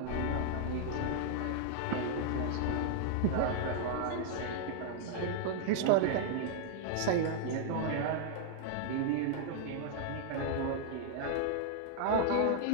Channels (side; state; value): both; different; correlation -0.01